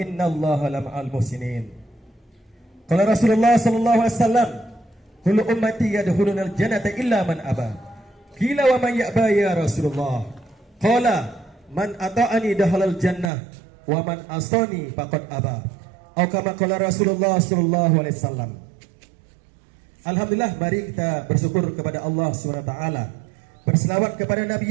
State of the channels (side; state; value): left; drops out; at 13.3 s